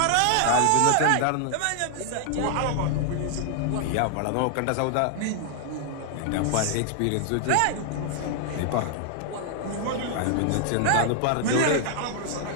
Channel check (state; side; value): different; both; correlation 0.00